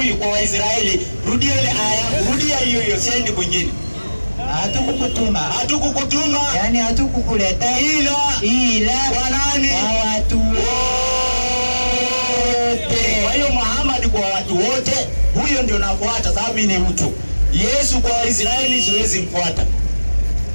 kwa Waisraeli. Rudia ile aya, rudia hiyo, siendi kwingine. Hatukukutuma. Yani hatukukuleta ila kwa nani? Kwa watu wote. Kwa hiyo Muhammad kwa watu wote, huyo ndio nafuata sababu mimi ni mtu. Yesu kwa Waisraeli siwezi mfuata.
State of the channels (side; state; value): both; inverted; correlation -1.00